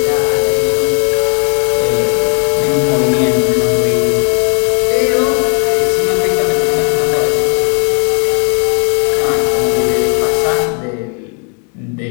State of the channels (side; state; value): right; quieter; 39.6 dB